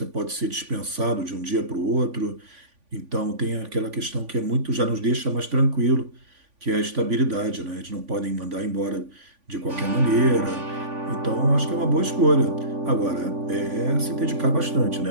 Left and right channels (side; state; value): left; late; 3.5 ms